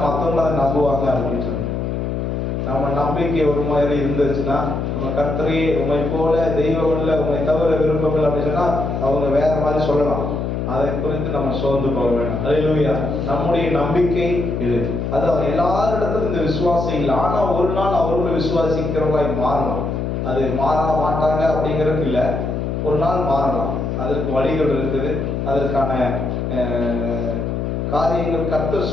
மற்றவங்க அதை நம்புவாங்க அப்படின்னு சொல்லி நம்ம நம்பிக்கை ஒரு மாதிரி இருந்துச்சுன்னா, நம்ம கர்த்தரே உண்மை போல தெய்வம் இல்லை, உண்மை தவிர விருப்பம் இல்லை அப்படின்னு சொன்னா அவங்க வேற மாதிரி சொல்லலாம். அதை குறித்து நம்ம சோர்ந்து போக வேண்டாம். ஹல்லேலூயா. நம்முடைய நம்பிக்கை இது. அது எல்லாரிடத்திலும் இந்த விசுவாசம் இல்லை. ஆனா ஒரு நாள் அவர்கள் விசுவாசிக்கிறவங்களாய் மாறலாம். அது மாற மாட்டாங்க அப்படிங்கிறது இல்லை, ஒரு நாள் மாறலாம். அதற்கு வழிகள் இருக்குது, அதற்கான காரியங்கள் கர்த்தர்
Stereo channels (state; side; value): noise; left; hum, 2 dB below the sound